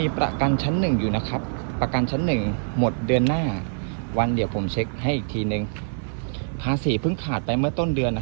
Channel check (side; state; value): left; silent; digital silence